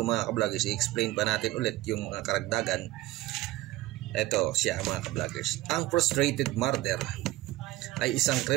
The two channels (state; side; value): quieter; left; 17.7 dB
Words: mga ka-vloggers, i-explain pa natin ulit yung mga karagdagan. Ito siya mga ka-vloggers. Ang frustrated murder ay isang